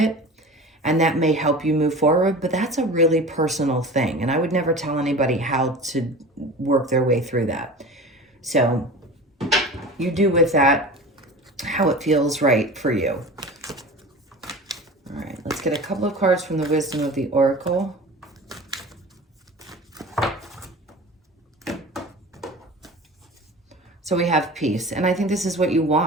and that may help you move forward, but that's a really personal thing. And I would never tell anybody how to work their way through that. So you do with that how it feels right for you. All right, let's get a couple of cards from the Wisdom of the Oracle. So we have peace, and I think this is what you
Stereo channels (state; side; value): normal; both; correlation 0.36